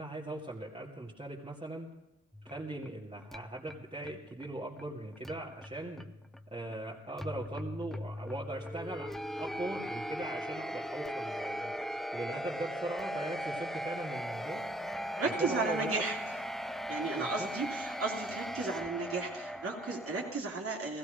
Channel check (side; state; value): both; normal; correlation 0.63